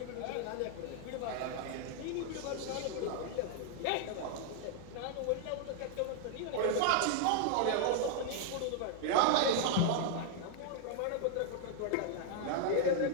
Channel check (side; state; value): both; different; correlation 0.00